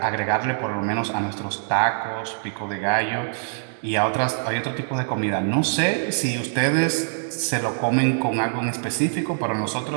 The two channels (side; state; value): left; silent; digital silence